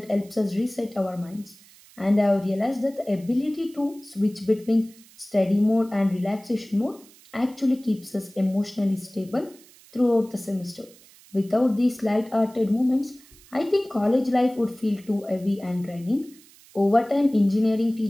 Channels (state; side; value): noise; right; hiss, 25 dB below the sound